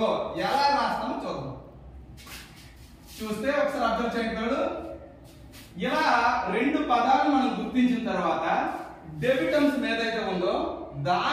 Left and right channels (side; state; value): both; identical; correlation 1.00